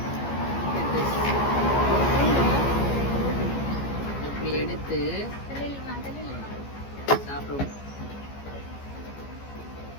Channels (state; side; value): late; right; 14 ms